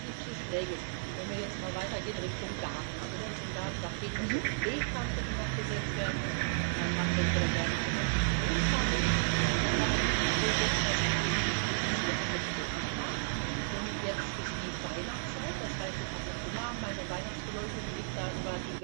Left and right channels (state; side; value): silent; left; 56 dB below the other